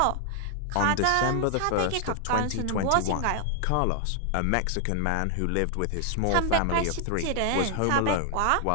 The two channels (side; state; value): both; different; correlation 0.00